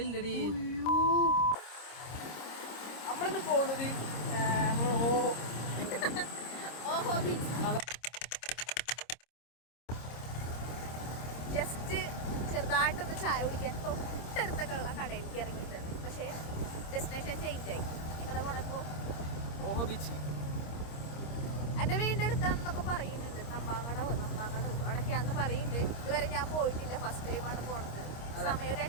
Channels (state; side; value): late; right; 26 ms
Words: നമ്മളിന്ന് പോകുന്നത് ഓഹോ ബീച്ച്. ജസ്റ്റ് ചെറുതായിട്ടൊന്ന് ചായ കുടിക്കാൻ തൊട്ടടുത്തൊക്കെയുള്ള കടയിലേക്ക് ഇറങ്ങിയിട്ടുണ്ട്. പക്ഷേ ഡെസ്റ്റിനേഷൻ ചേഞ്ച് ആയി. നിങ്ങളുടെ പോണപ്പോ ഓഹോ ബീച്ച് എൻ്റെ വീടിൻ്റെ അടുത്താണെന്നൊക്കെ പറയുന്നുണ്ട്. നമ്പാങ്ങടോ അവിടൊക്കെയാണെന്ന് പറയുന്നുണ്ട്. ഇതുവരെ ഞാൻ പോയിട്ടില്ല, ഫസ്റ്റ് ടൈമാണ് പോണത്. സമയം ഒരു